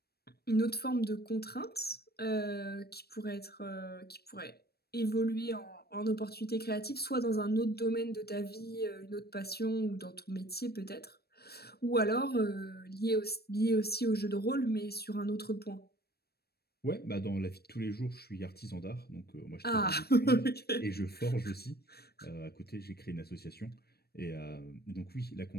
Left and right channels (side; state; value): right; late; 0.46 ms